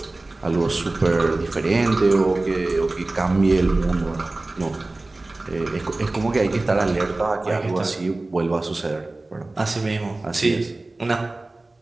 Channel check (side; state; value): left; quieter; 3.0 dB